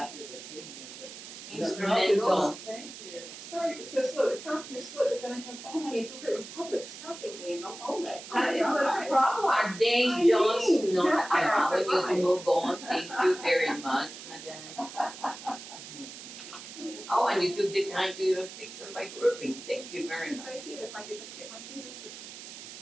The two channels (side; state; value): right; noise; hiss, 13 dB below the sound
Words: your rhythm. Instrumental. Thank you. Sorry, it was so slow, the counter is slow, but then I have all my in public stopping me and all that. That is such a problem. Are they I just mean, not that part allowing you to fine. move on? Thank you very much, madam. Oh, and you took the time to even fix them by grouping. Thank you very much. I did, if I could just get my fingers